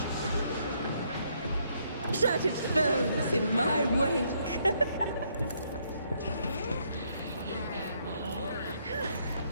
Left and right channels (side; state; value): both; inverted; correlation -0.71